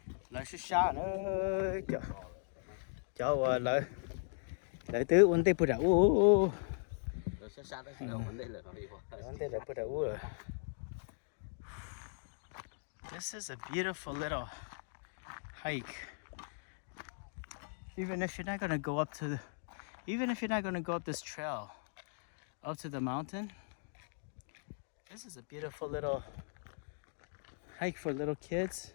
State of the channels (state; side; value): silent; right; digital silence